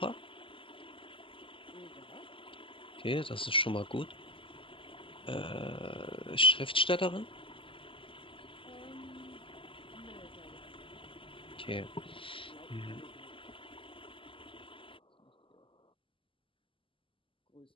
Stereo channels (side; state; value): right; late; 0.25 ms